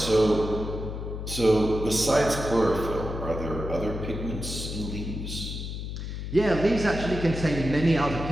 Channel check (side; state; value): left; noise; hum, 6 dB below the sound